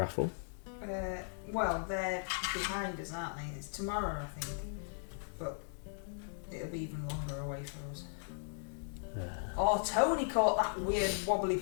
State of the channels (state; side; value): silent; right; digital silence